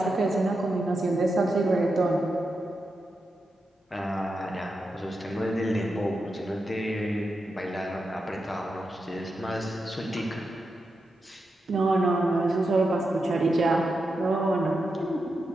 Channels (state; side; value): normal; both; correlation 0.88